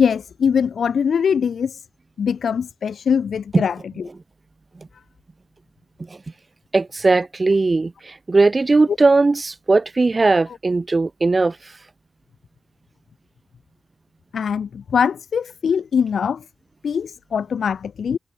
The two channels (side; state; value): both; normal; correlation 0.88